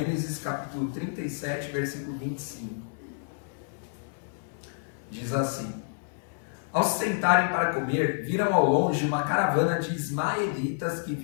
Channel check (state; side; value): silent; right; 56 dB below the other